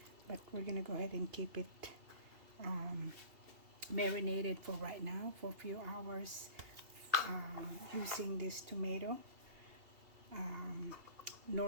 but we're gonna go ahead and keep it marinated for right now for a few hours using this tomato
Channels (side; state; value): left; late; 2.7 ms